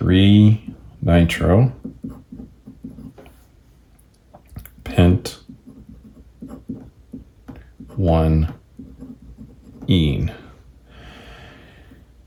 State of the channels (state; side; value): identical; both; correlation 1.00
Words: nitro, pent, 1 ene.